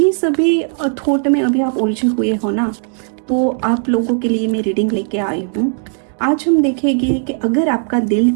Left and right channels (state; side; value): silent; left; 56 dB below the other